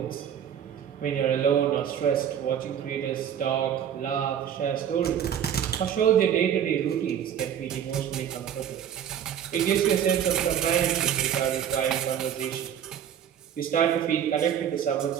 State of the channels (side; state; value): left; quieter; 9.2 dB